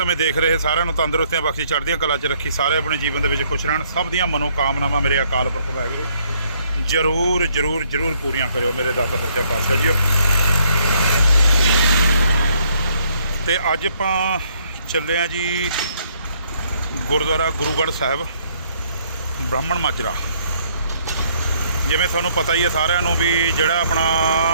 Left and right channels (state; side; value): inverted; both; correlation -0.67